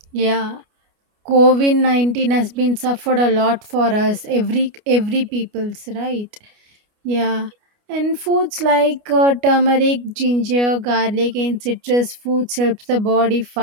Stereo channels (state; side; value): late; left; 29 ms